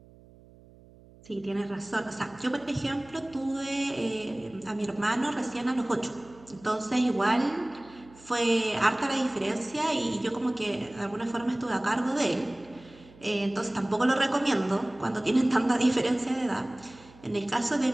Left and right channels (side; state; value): right; noise; hum, 24 dB below the sound